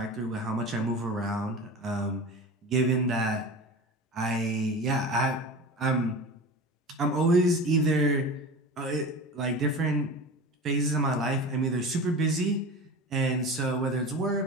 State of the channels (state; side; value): normal; both; correlation 0.32